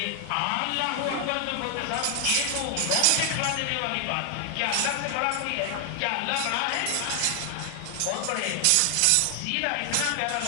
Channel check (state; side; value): different; both; correlation 0.00